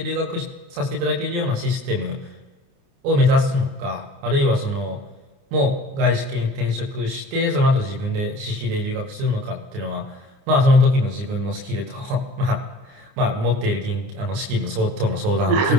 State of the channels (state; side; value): late; left; 29 ms